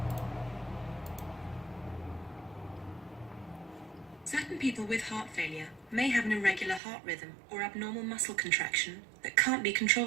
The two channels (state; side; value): drops out; left; at 6.8 s